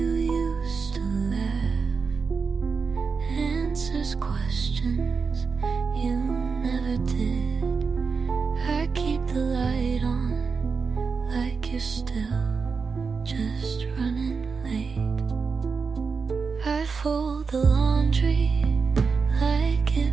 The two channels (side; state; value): left; quieter; 5.1 dB